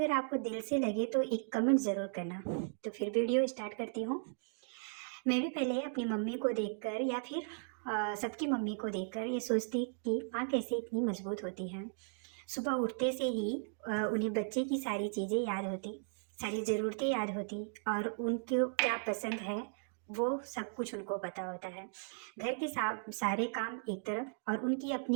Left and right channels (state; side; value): silent; left; digital silence